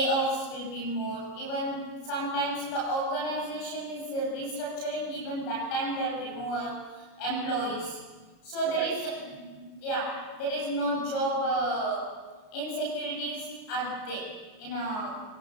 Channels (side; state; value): right; late; 33 ms